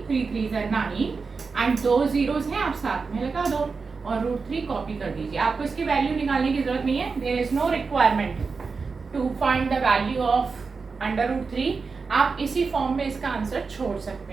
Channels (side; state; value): left; quieter; 4.7 dB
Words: 3 3 9 एंड 2 zeros हैं, आप साथ में लगा दो और √3 कॉपी कर दीजिए। आपको इसकी वैल्यू निकालने की जरूरत नहीं है, there is no requirement to find the value of √3। आप इसी फॉर्म में इसका आंसर छोड़